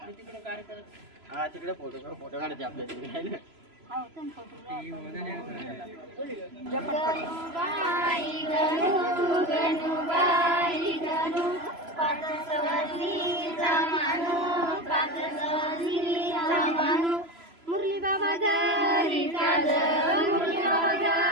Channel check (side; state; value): left; late; 3.0 ms